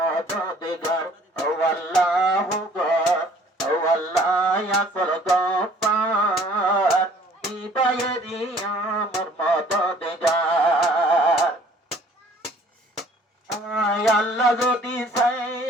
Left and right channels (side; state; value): both; normal; correlation 0.55